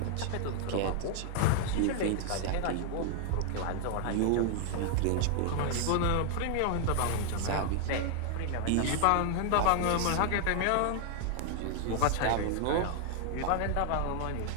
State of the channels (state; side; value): different; both; correlation 0.00